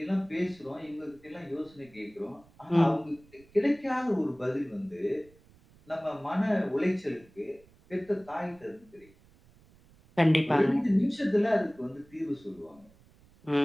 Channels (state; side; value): noise; right; rumble, 28 dB below the sound